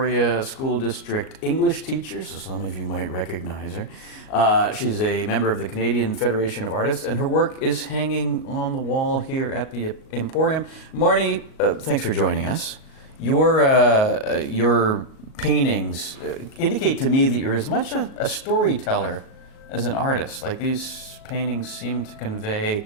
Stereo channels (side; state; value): right; late; 38 ms